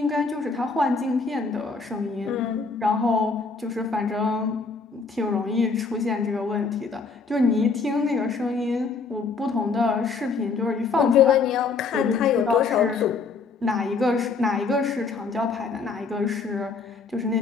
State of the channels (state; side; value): quieter; right; 4.6 dB